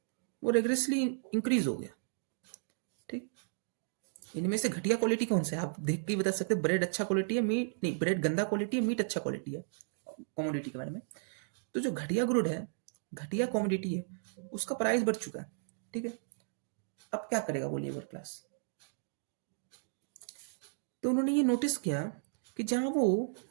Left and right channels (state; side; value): silent; left; digital silence